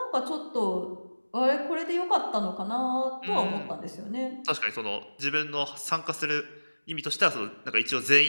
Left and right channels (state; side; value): inverted; both; correlation -1.00